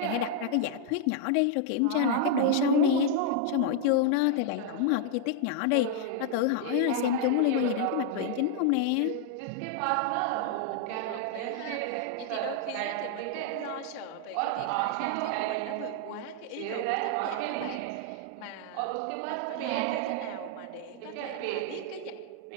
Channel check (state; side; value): different; both; correlation 0.00